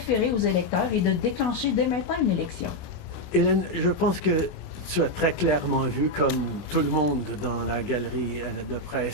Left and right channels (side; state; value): right; late; 28 ms